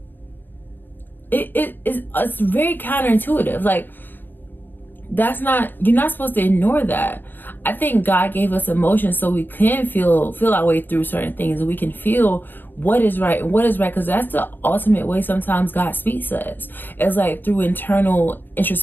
it's very counterintuitive. You're not supposed to ignore that. I think God gave us emotions so we can feel our way through certain things, and we can feel what is right and what is right, because that's the ultimate way sometimes God speaks to us. It's through internal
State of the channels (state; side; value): late; right; 0.093 ms